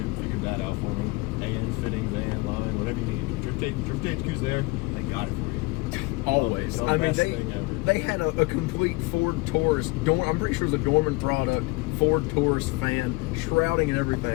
figured that out for me. And fittings, and line, whatever you need. Drift HQ's there, they got it for you. Always. The I mean, best thing ever. they had a complete Ford Taurus. I'm pretty sure it was a Dorman product. Ford Taurus fan, shrouding and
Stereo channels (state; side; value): quieter; right; 24.2 dB